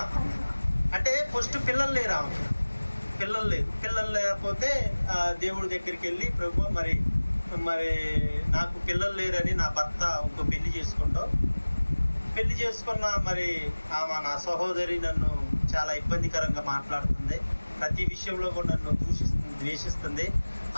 అంటే ఫస్ట్ పిల్లలు లేరు ఆమెకి, పిల్లలు లేకపోతే దేవుడి దగ్గరికి వెళ్ళి ప్రభు మరి నాకు పిల్లలు లేరని నా భర్త ఇంకో పెళ్లి చేసుకున్న మరి ఆమె నా సహోదరి నన్ను చాలా ఇబ్బందికరంగా మాట్లాడుతుంది, ప్రతి విషయంలో కూడా నన్ను ద్వేషిస్తుంది,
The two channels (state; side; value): inverted; both; correlation -1.00